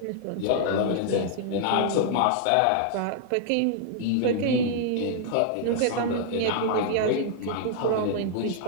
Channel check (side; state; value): both; different; correlation -0.01